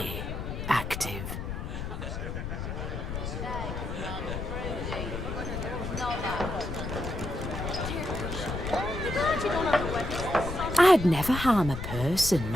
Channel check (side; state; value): left; noise; rumble, 5 dB below the sound